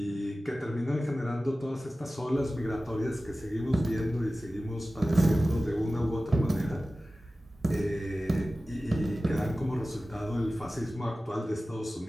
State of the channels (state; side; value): normal; both; correlation 0.96